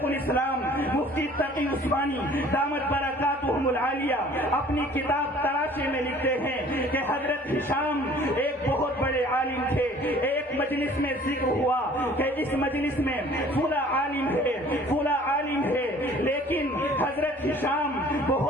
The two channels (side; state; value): both; normal; correlation 0.51